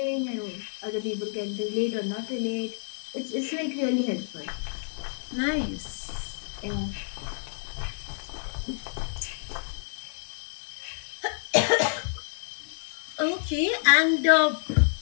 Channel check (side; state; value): right; silent; digital silence